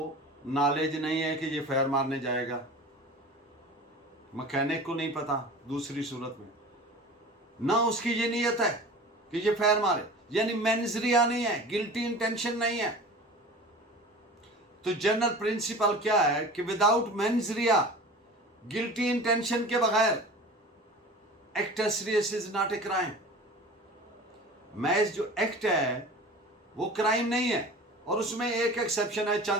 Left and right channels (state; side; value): normal; both; correlation 0.38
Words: नॉलेज नहीं है कि ये फायर मारने जाएगा, मैकेनिक को नहीं पता, दूसरी सूरत में ना उसकी ये नीयत है कि ये फायर मारे, यानी मेंजरिया नहीं है, गिल्टी इंटेंशन नहीं है। तो जनरल प्रिंसिपल क्या है कि विदाउट मेंजरिया, गिल्टी इंटेंशन के बगैर, act as serious is not a crime. मैच जो एक्ट है वो क्राइम नहीं है, और उसमें एक एक्सेप्शन है